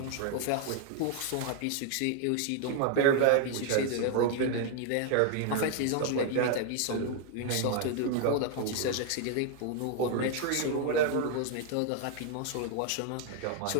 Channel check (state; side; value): different; both; correlation 0.00